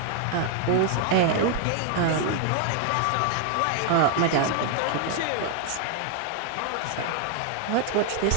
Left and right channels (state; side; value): different; both; correlation 0.00